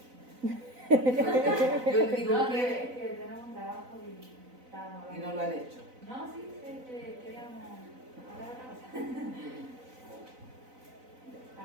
Yo le digo No, que es que tenemos un trabajo y estábamos y hablando. no lo han hecho. No, sí, queríamos hablar de otra cosa.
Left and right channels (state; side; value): late; left; 4.0 ms